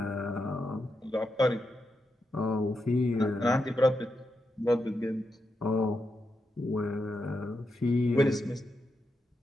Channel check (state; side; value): normal; both; correlation 0.85